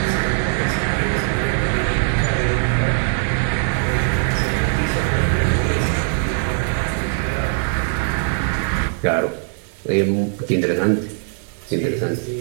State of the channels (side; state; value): left; silent; digital silence